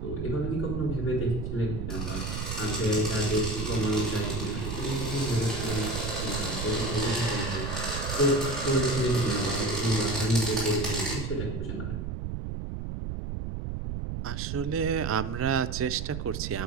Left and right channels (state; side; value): noise; right; rumble, 4 dB below the sound